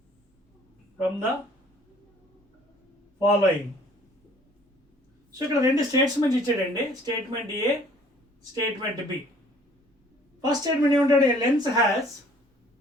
From the following. So ఇక్కడ రెండు statements ఇచ్చాడండి. స్టేట్మెంట్ ఏ, statement B. First statement ఏమంటాడు? A lens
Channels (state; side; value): normal; both; correlation 0.56